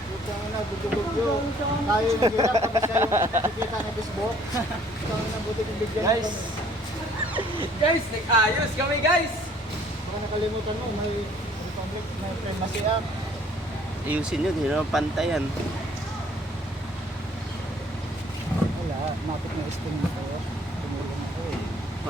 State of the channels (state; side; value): normal; both; correlation 0.58